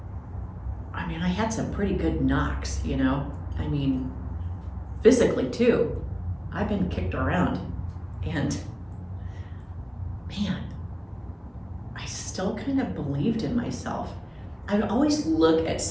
I mean, I had some pretty good knocks, you know? I mean, physically too. I've been kicked around and man, I still kind of believed in myself. I'd always look at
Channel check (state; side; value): identical; both; correlation 1.00